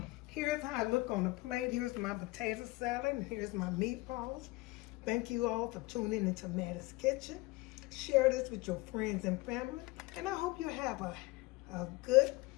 Here's how I look on the plate. Here's my potato salad. And here's my meatballs. Thank you all for tuning into Mattie's Kitchen. Share this with your friends and family. And I hope you have a good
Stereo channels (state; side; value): quieter; right; 22.3 dB